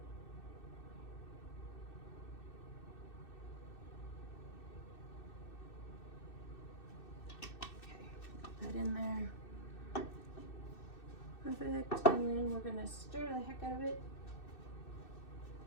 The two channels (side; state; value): right; late; 2.6 ms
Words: That in there. Perfect. And then we're gonna stir the heck out of it.